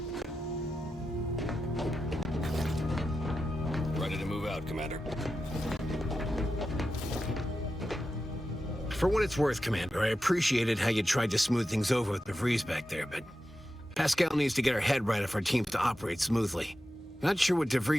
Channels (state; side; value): normal; both; correlation 0.91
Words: Ready to move out, Commander. For what it's worth, Commander, I appreciated how you tried to smooth things over with DeVries back there, but Pascal needs to get her head right if our team's to operate smoothly. Not sure what